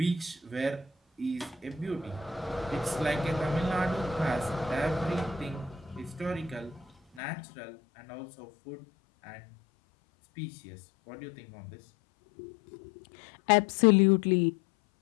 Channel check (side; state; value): right; drops out; at 7.2 s